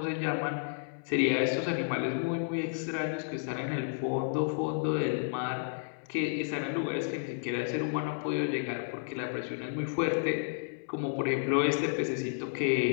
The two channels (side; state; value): right; silent; 57 dB below the other